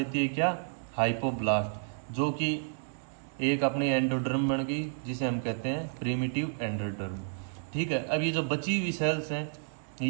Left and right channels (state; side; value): silent; left; digital silence